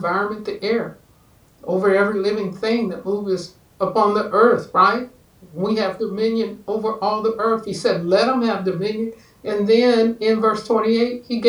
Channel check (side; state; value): both; identical; correlation 1.00